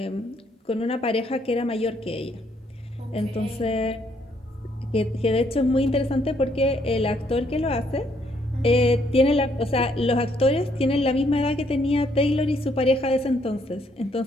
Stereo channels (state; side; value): normal; both; correlation 0.70